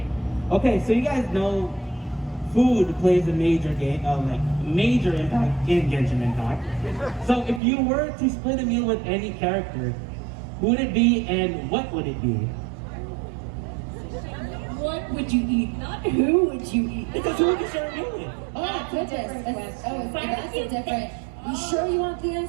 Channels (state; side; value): drops out; left; at 7.6 s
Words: Okay, so you guys know food plays a major major impact in Genshin Impact. So if you were to split a meal with any character, who would it be and what would it be? What would you eat? Not who would you eat? Because who would you share a meal with? Oh, goodness. That's a different. You sure you want the